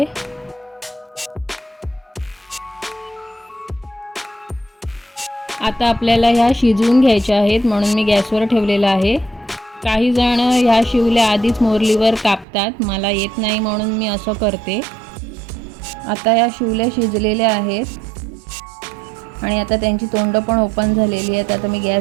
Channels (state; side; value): drops out; left; at 12.5 s